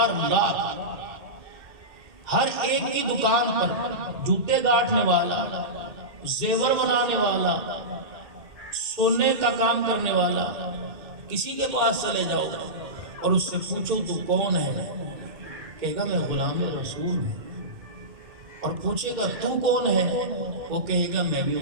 لاکھ، ہر ایک کی دکان پر جوتے گاٹنے والا، زیور بنانے والا، سونے کا کام کرنے والا، کسی کے پاس چلے جاؤ اور اس سے پوچھو تو کون ہے، کہے گا میں غلام رسول ہوں۔ اور پوچھے گا تو کون ہے، وہ کہے گا میں بھی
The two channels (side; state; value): left; late; 2.6 ms